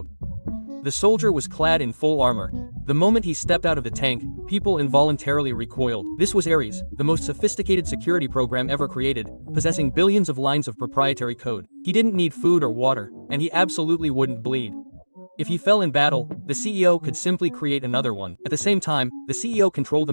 The soldier was clad in full armor. The moment he stepped out of the tank, people involuntarily recoiled. This was Ares, the most sophisticated security program ever created, possessing billions of lines of proprietary code. He didn't need food or water, and he absolutely wouldn't bleed. If he fell in battle, the CEO could simply create another one. At the same time, the CEO controlled the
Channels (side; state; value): both; inverted; correlation -1.00